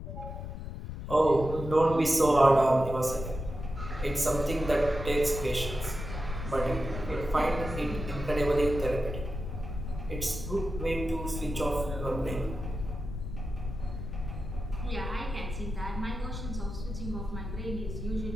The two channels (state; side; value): noise; left; rumble, 7 dB below the sound